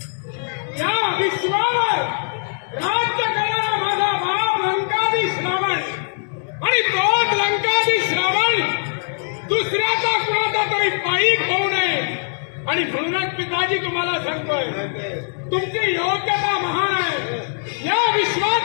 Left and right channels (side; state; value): right; silent; digital silence